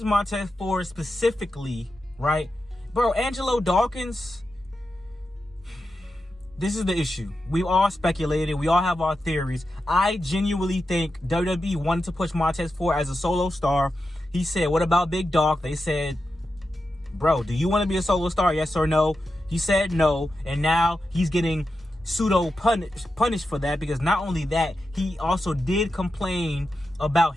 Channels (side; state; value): both; normal; correlation 0.89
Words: Montez Ford specifically, right? Bro, Angelo Dawkins, this is the issue. We all speculated. We all have our theories. I genuinely think WWE wanted to push Montez Ford as a solo star. He said, what about Big Dog? They said, bro, do you want to be a solo star? Yes or no? He said no, and now he's getting pseudo punished for that, because not only that, he also did complain about